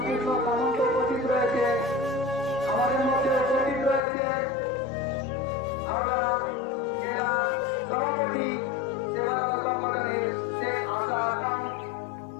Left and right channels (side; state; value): right; drops out; at 4.0 s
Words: সামন্ত উপস্থিত রয়েছে। আমাদের মধ্যে উপস্থিত রয়েছে আমরা জেলা সভাপতি সেবা সংগঠনের শেখ আসাদ,